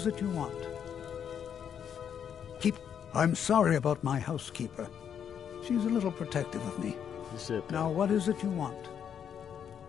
it you want? I'm sorry about my housekeeper. She's a little protective of me. Now, what is it you want?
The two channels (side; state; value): right; quieter; 8.3 dB